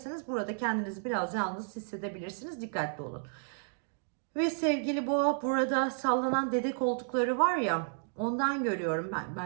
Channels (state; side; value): silent; left; digital silence